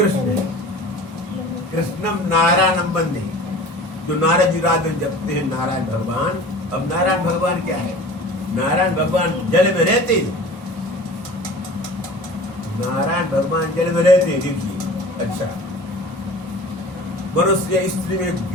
है। कृष्णम नारायणम वंदे, जो नारद जी रात में जपते हैं नारायण भगवान। अब नारायण भगवान क्या है? नारायण भगवान जल में रहते हैं, नारायण भगवान जल में रहते हैं। देखिए, अच्छा मनुष्य स्त्री में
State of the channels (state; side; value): normal; both; correlation 0.41